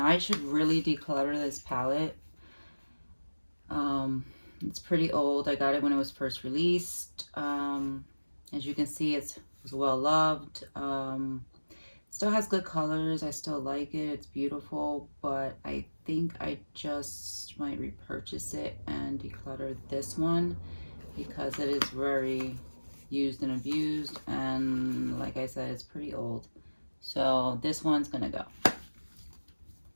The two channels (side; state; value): both; inverted; correlation -1.00